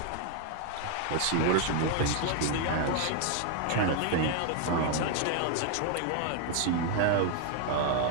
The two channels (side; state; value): both; different; correlation 0.00